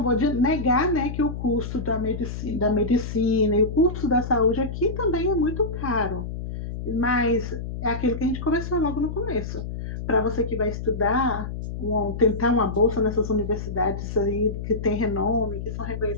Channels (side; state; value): left; noise; hum, 6 dB below the sound